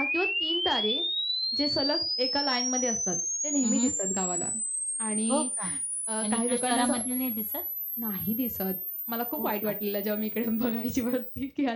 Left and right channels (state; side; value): identical; both; correlation 1.00